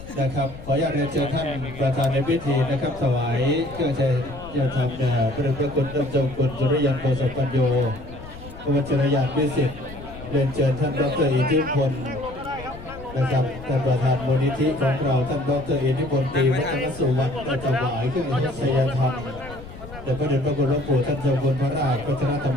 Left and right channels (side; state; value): left; noise; rumble, 15 dB below the sound